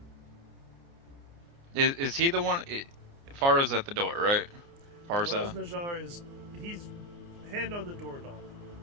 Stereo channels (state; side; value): late; left; 29 ms